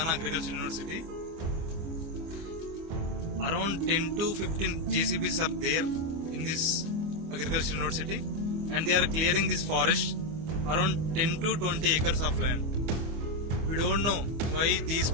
Agriculture University. Around 10 to 15 JCBs are there in this Agriculture University, and they are clearing this forest, around 10 to 20 acres of land. We don't know why these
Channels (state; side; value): late; left; 25 ms